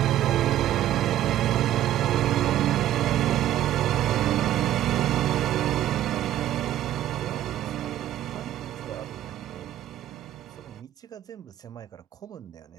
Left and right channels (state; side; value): quieter; left; 12.8 dB